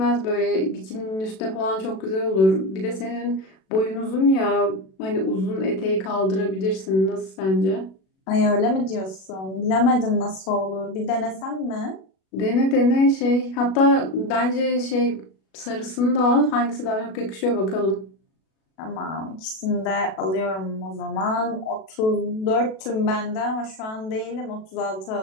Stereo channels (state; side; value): late; right; 37 ms